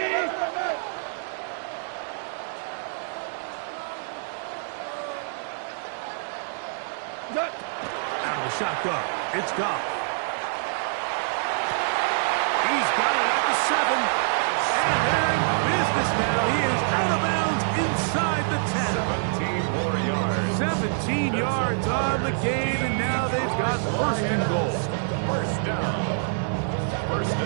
Out of the shotgun, it's Goff. He's got it at the 7. And they're in business now. He is out of bounds inside the 10. 17 more yards. 17 yards on the gain, and now they've got first and goal. First down. First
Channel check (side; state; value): left; silent; digital silence